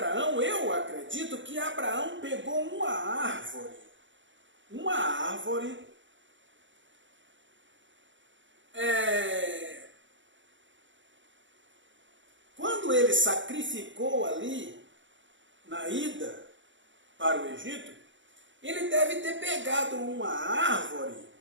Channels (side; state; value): left; late; 0.55 ms